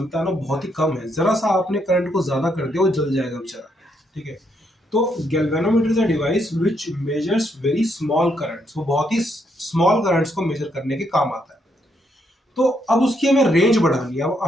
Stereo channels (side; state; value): both; normal; correlation 0.76